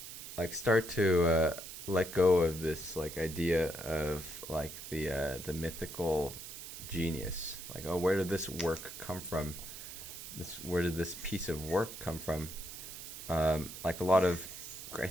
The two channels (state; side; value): noise; right; hiss, 11 dB below the sound